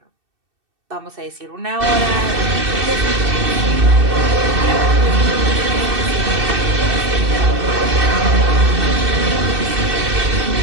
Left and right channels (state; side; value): late; left; 2.6 ms